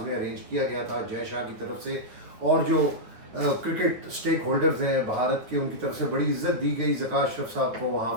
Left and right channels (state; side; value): late; left; 9.5 ms